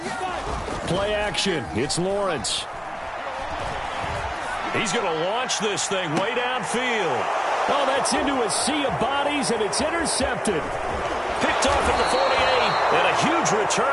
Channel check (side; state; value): both; identical; correlation 1.00